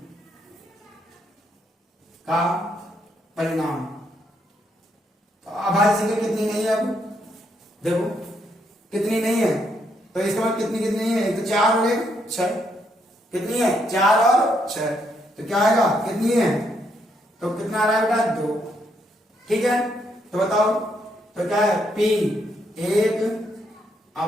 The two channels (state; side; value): normal; both; correlation 0.75